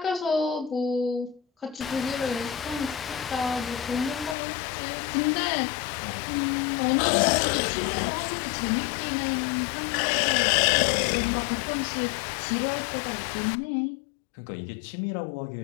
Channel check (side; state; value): right; drops out; at 4.4 s